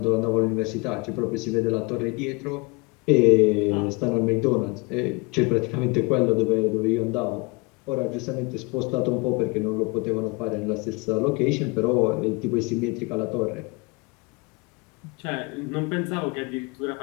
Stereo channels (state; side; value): quieter; right; 28.0 dB